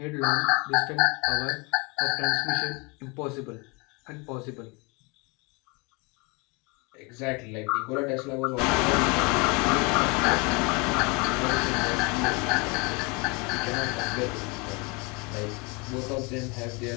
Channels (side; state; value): right; quieter; 29.1 dB